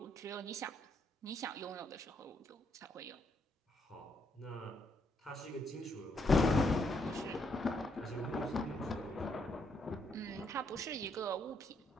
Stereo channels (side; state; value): both; normal; correlation 0.75